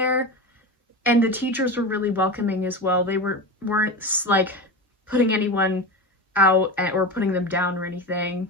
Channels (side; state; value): both; normal; correlation 0.24